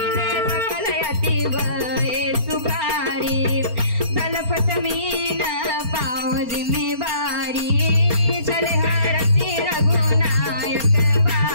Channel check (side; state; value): left; late; 4.3 ms